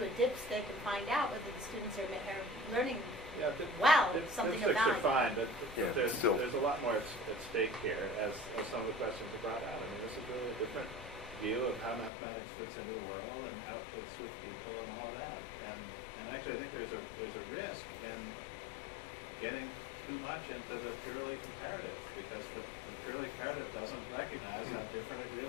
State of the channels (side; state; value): right; drops out; at 12.1 s